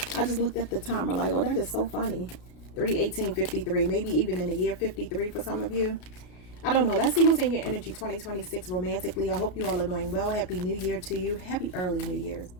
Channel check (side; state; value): right; late; 33 ms